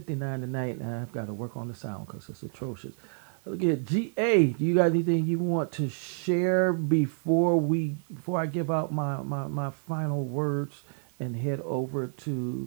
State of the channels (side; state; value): left; silent; digital silence